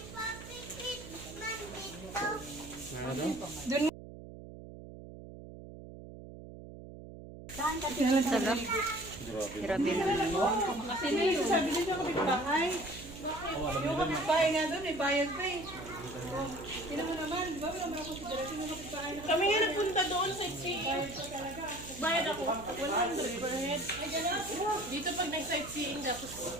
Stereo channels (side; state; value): right; noise; hum, 14 dB below the sound